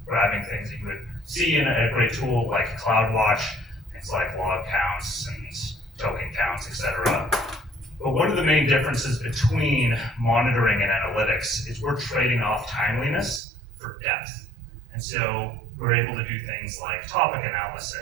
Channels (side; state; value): left; drops out; at 13.4 s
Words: grabbing things that you would see in a great tool like CloudWatch, things like log counts and token counts, etc. But one of the main differences between monitoring and analytics is we're trading off timeliness for depth. And so we're able to do things like topic